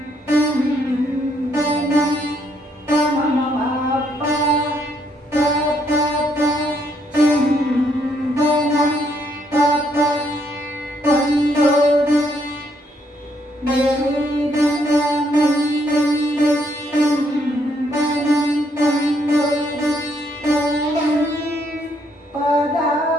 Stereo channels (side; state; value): both; normal; correlation 0.72